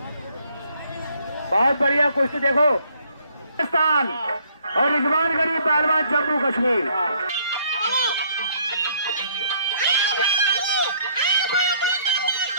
बहुत बढ़िया कुश्ती देखो, पाकिस्तान और रिजवान गनी पहलवान, जम्मू कश्मीर।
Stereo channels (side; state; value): both; inverted; correlation -0.64